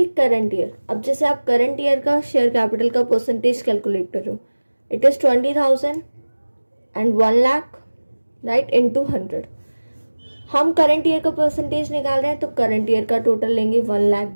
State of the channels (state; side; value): inverted; both; correlation -1.00